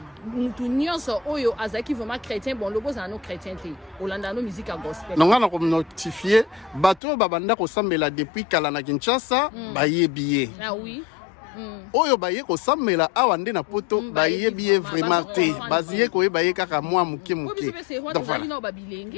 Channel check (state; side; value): drops out; right; at 7.0 s